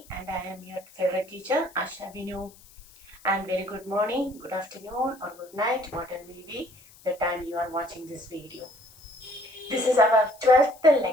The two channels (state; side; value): noise; left; hiss, 24 dB below the sound